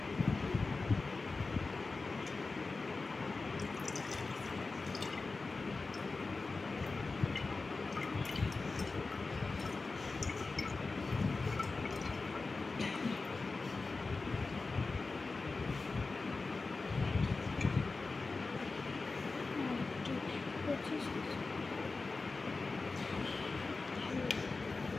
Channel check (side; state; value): right; quieter; 3.8 dB